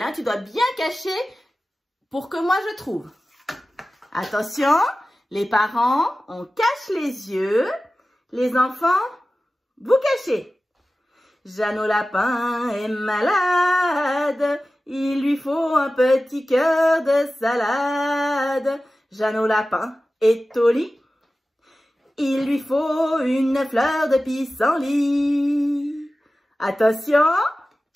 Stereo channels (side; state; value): both; normal; correlation 0.95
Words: hein. Tu dois bien cacher pour que moi, je trouve. Attention, les parents, on cache les yeux. Les enfants, vous cachez. Jeannot Lapin est malade. Il lui faut un petit cœur de salade. Jeannot Lapin est au lit. Il lui faut une fleur de pissenlit. Attention,